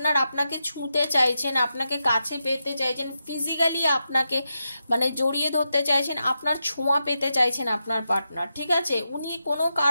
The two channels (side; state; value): both; inverted; correlation -0.87